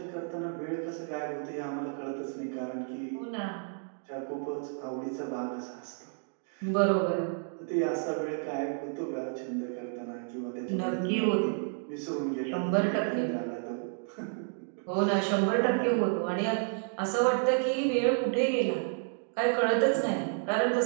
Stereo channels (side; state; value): left; silent; 57 dB below the other